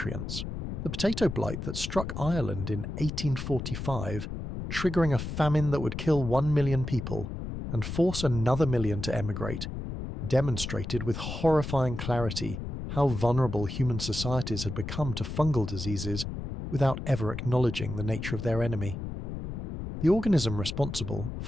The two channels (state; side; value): noise; left; rumble, 6 dB below the sound